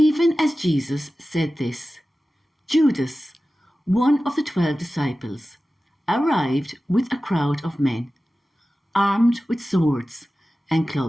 as Jesus said this, Judas, one of the 12 disciples, arrived with a crowd of men, armed with swords and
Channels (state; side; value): normal; both; correlation 0.95